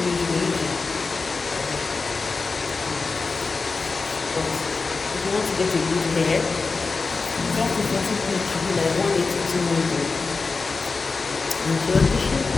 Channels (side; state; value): right; quieter; 4.2 dB